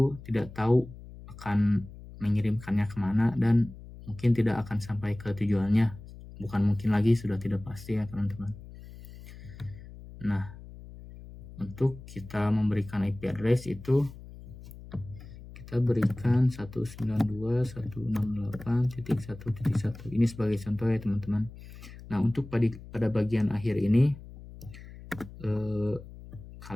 tidak tahu akan mengirimkannya kemana dan mungkin tidak akan sampai ke tujuannya. Bukan mungkin lagi, sudah tidak pasti ya teman-teman. Nah, untuk kita memberikan IP address itu kita berikan 192.168.1.1. Ini sebagai contoh ya teman-teman. Nah, untuk pada bagian akhir ini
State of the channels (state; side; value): noise; left; hum, 16 dB below the sound